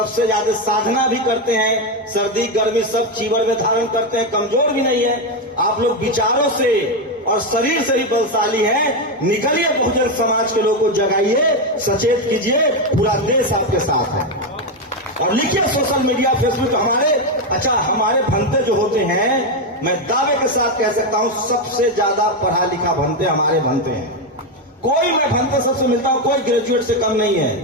ज्यादा साधना भी करते हैं, सर्दी गर्मी सब चीवर में धारण करते हैं, कमजोर भी नहीं है। आप लोग विचारों से और शरीर से ही बलशाली हैं। निकलिए, बहुजन समाज के लोगों को जगाइए, सचेत कीजिए, पूरा देश आपके साथ है। और लिखिए सोशल मीडिया, फेसबुक, हमारे भंते जो होते हैं, मैं दावे के साथ कह सकता हूं सबसे ज्यादा पढ़ा लिखा भंते हमारे भंते हैं। कोई मैं भंते सबसे मिलता हूं, कोई ग्रेजुएट से कम नहीं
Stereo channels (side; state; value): both; normal; correlation 0.08